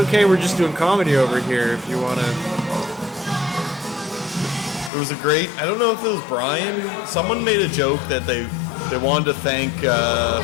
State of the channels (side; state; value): right; drops out; at 4.9 s